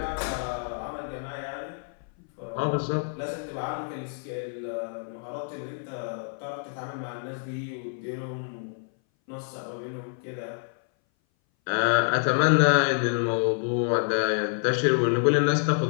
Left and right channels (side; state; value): right; silent; 58 dB below the other